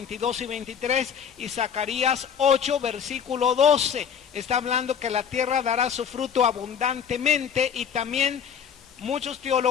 y 23, y Zacarías 8, versículo 12. Está hablando que la tierra dará su fruto abundantemente, y también muchos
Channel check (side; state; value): right; quieter; 7.7 dB